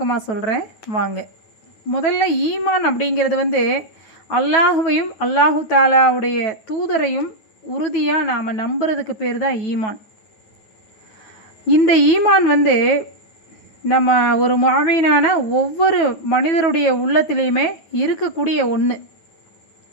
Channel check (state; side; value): late; right; 9.2 ms